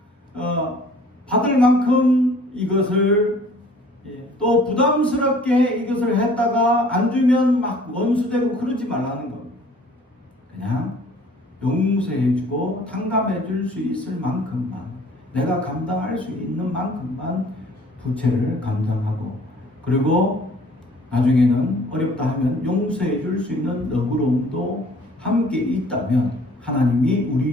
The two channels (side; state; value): both; normal; correlation 0.53